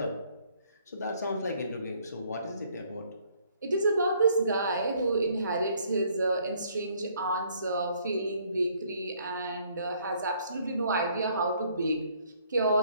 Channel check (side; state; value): both; inverted; correlation -0.64